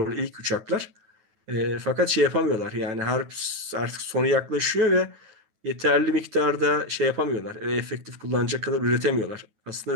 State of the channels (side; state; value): left; late; 9.6 ms